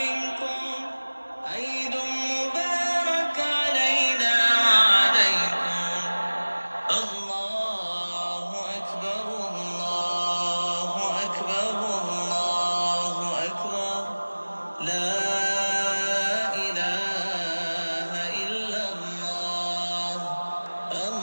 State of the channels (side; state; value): both; inverted; correlation -1.00